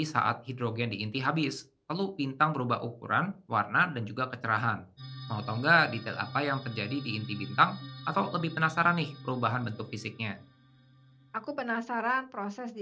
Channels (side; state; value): both; identical; correlation 1.00